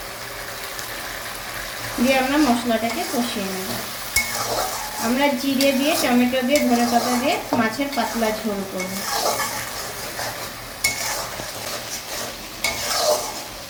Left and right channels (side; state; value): both; identical; correlation 1.00